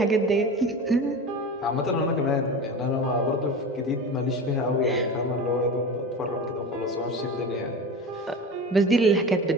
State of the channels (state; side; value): normal; both; correlation 0.30